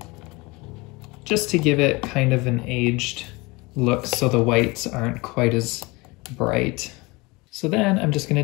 just to give it kind of an aged look so the whites aren't quite as bright. So then I'm just going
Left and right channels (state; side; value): quieter; right; 24.5 dB